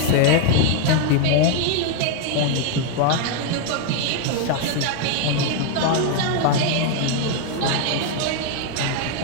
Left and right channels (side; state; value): both; different; correlation 0.00